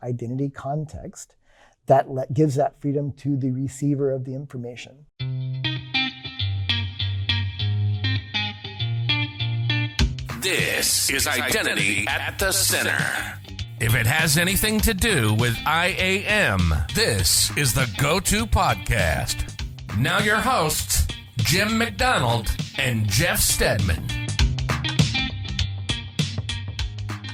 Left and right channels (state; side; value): identical; both; correlation 1.00